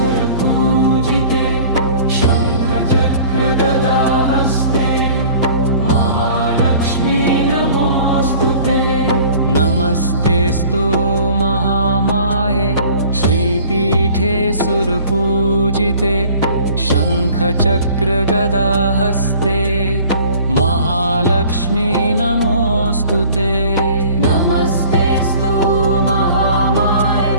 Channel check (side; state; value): both; inverted; correlation -0.47